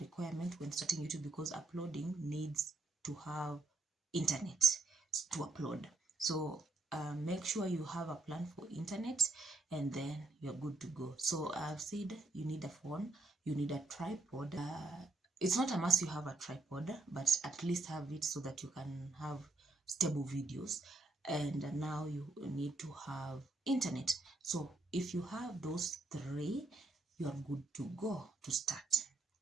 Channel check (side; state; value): left; quieter; 3.1 dB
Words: when starting YouTube, because uploading needs to have internet to upload. So make sure you have a plan for internet, and then you're good to go. So I've said you need a phone, you need a tripod. It's not a must you have a tripod, but at least have it so that you can have stable videos. And now you need to have internet. So if you have those three, you are good to go to start.